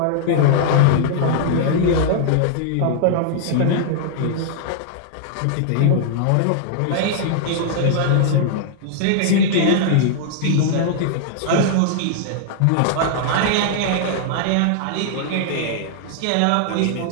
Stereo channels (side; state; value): both; different; correlation -0.01